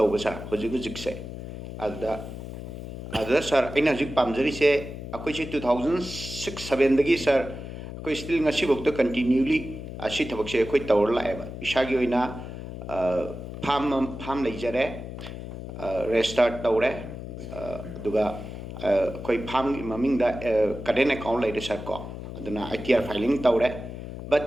sir hujik se. Ada sir ina hujik pamjari se akoi se 2006-7 dagi sir akoi still ngasi bok to continually asi tabak se akoi tawar la eba. Isagi oina farm leijare restart tawre duga koi farm maming da current account leide sir ko aduna ITR filing tawre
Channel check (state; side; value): noise; left; hum, 9 dB below the sound